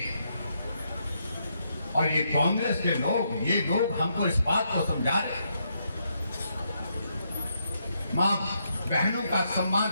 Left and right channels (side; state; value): both; inverted; correlation -0.78